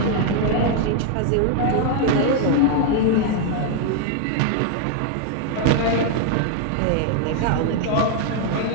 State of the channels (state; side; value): different; both; correlation 0.00